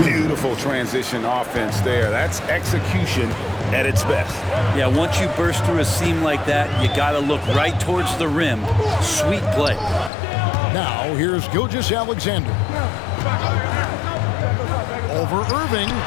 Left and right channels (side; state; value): right; drops out; at 10.1 s